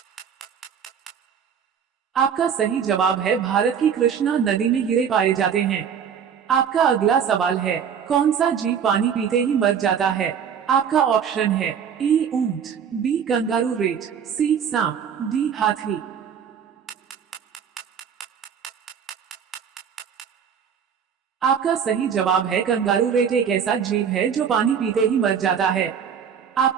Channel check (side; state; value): left; quieter; 7.6 dB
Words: आपका सही जवाब है भारत की कृष्णा नदी में हीरे पाए जाते हैं। आपका अगला सवाल है, कौन सा जीव पानी पीते ही मर जाता है? आपका ऑप्शन है ए ऊंट, बी कंगारू रेट, सी सांप, डी हाथी। आपका सही जवाब है कंगारू रेट एक ऐसा जीव है जो पानी पीते ही मर जाता है।